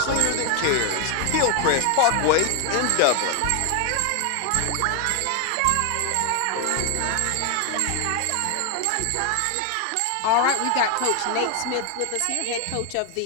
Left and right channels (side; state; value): both; different; correlation 0.01